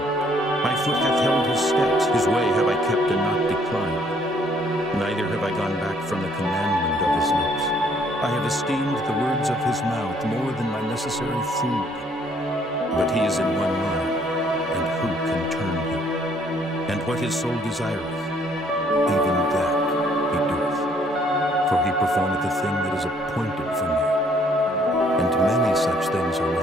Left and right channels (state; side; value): normal; both; correlation 0.64